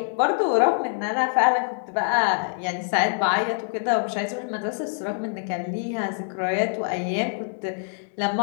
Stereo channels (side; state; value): right; silent; digital silence